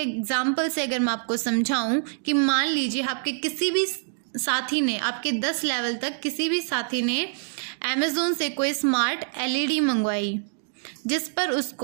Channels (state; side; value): silent; left; digital silence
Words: एग्जाम्पल से अगर मैं आपको समझाऊं कि मान लीजिए आपके किसी भी साथी ने, आपके 10 लेवल तक किसी भी साथी ने अमेज़ोन से कोई स्मार्ट LED मंगवाई, जिस पर